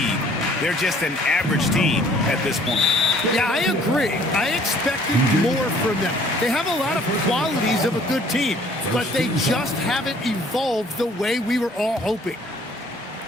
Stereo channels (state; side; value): normal; both; correlation 0.57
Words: they're just an average team at this point. Yeah, I agree. I expected more from them. They have a lot of qualities of a good team, but they just haven't evolved the way we were all hoping.